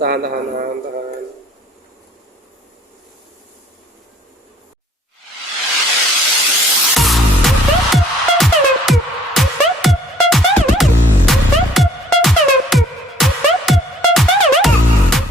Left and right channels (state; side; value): normal; both; correlation 0.58